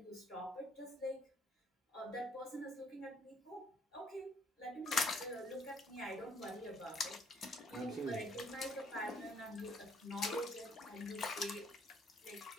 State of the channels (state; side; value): normal; both; correlation 0.64